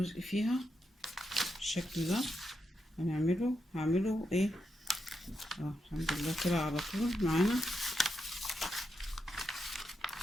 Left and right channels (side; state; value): both; normal; correlation 0.84